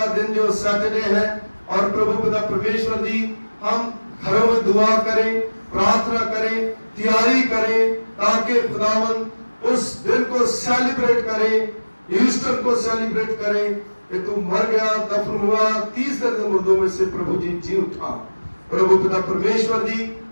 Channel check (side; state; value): both; inverted; correlation -1.00